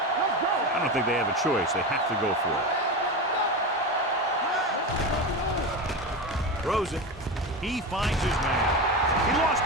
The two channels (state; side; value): normal; both; correlation 0.21